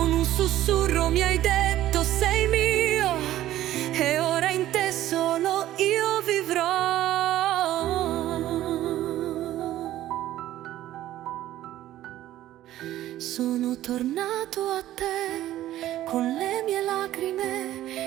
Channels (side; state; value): left; quieter; 13.8 dB